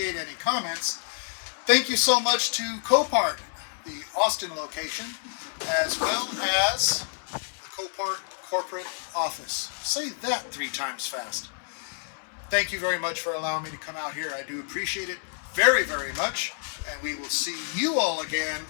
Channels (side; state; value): right; silent; 59 dB below the other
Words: any comments. Thank you so much to Copart, the Austin location, as well as the Copart corporate office. Say that 3 times fast. Thank you very much for allowing me to come out here. I do appreciate it very, very much. And we will see you all again